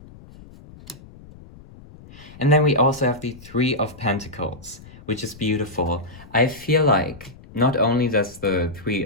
And then we also have the Three of Pentacles, which is beautiful. I feel like not only does the Three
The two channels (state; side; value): noise; left; rumble, 20 dB below the sound